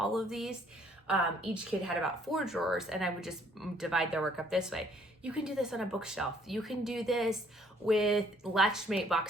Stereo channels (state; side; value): normal; both; correlation 0.63